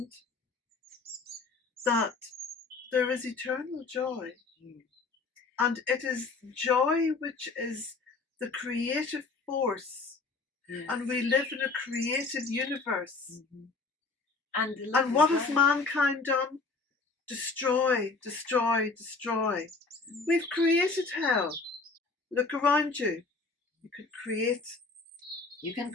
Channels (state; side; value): quieter; right; 4.0 dB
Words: that there is eternal joy. And it is joy which is the creative force. Yes. And we live in a creative universe. And what has mankind done? Destroy, destroy, destroy. We've created hell. Look around you. You can